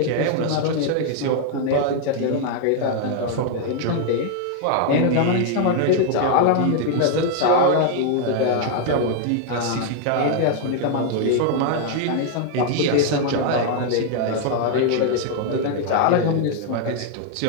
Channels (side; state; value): both; different; correlation 0.00